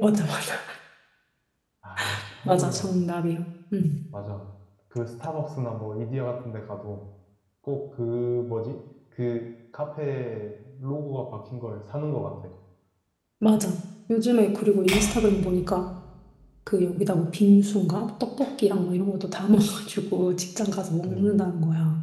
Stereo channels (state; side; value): identical; both; correlation 1.00